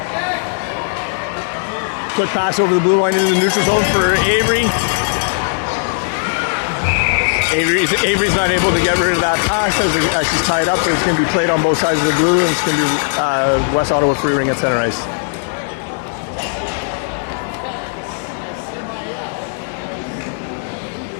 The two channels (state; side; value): silent; right; 61 dB below the other